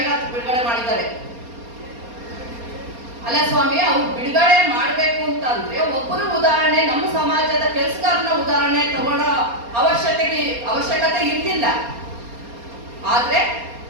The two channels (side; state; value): left; late; 4.3 ms